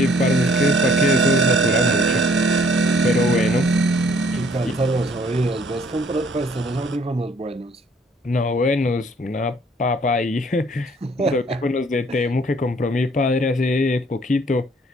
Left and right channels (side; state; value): both; normal; correlation 0.60